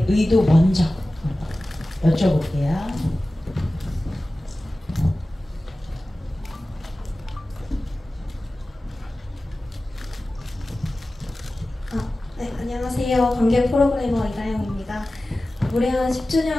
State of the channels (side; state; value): both; normal; correlation 0.96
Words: 의도 먼저 여쭤볼게요. 네, 안녕하세요. 관객 프로그래머 이다영입니다. 무례한